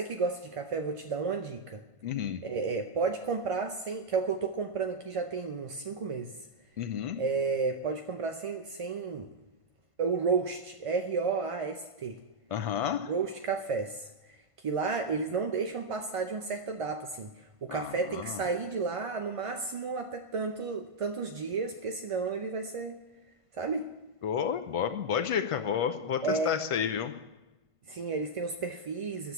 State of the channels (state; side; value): late; left; 1.5 ms